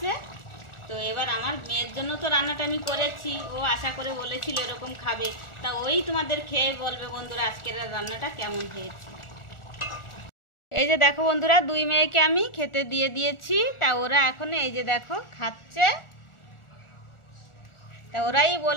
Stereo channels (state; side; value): late; right; 1.4 ms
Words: তো এবার আমার মেয়ের জন্য তো রান্নাটা আমি করেছি, ও আশা করে বলেছিল এরকম খাবে। তা ওই তোমাদের খেয়ে বলবে বন্ধুরা আজকের রান্নাটা কেমন হয়েছে। এই যে দেখো বন্ধুরা 2 মেয়েকে আমি খেতে দিয়ে দিয়েছি। তা ওরা এখন এই যে দেখো খাচ্ছে। তা ওরাই